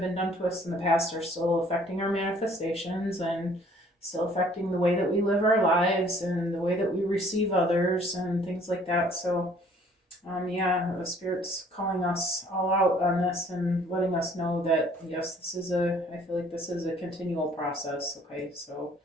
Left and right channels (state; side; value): normal; both; correlation 0.57